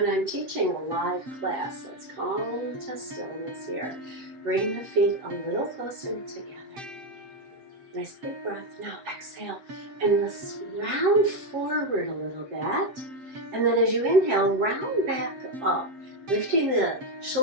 I'm teaching a live class, let's come to stillness here. Bring the feet a little closer together. Nice big breath. Now exhale and let's round forward a little bit. And then as you inhale, round back up, lifting the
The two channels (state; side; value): late; left; 7.6 ms